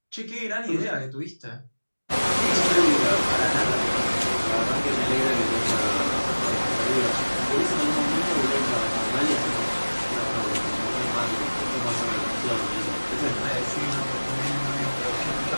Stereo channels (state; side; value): inverted; both; correlation -1.00